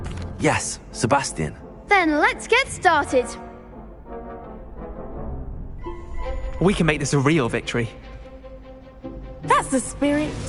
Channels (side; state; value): both; identical; correlation 1.00